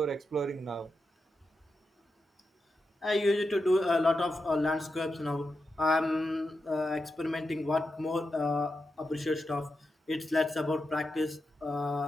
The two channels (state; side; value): normal; both; correlation 0.88